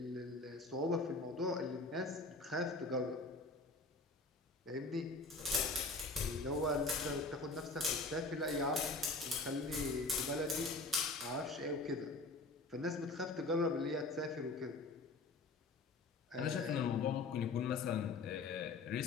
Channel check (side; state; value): right; quieter; 3.3 dB